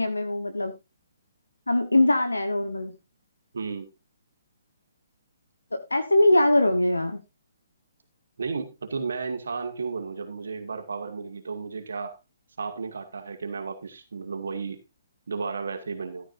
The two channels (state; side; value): inverted; both; correlation -0.93